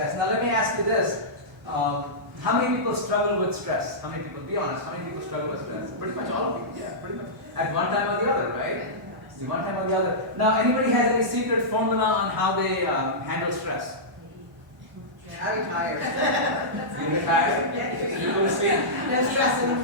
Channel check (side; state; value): both; normal; correlation -0.14